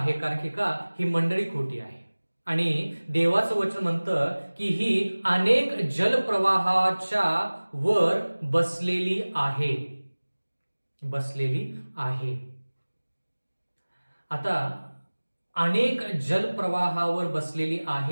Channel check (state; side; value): inverted; both; correlation -1.00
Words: कारण की का, ही मंडळी खोटी आहे. आणि देवाचं वचन म्हणतं की ही अनेक जलप्रवाहाच्या वर बसलेली आहे. आता अनेक जलप्रवाहावर बसलेली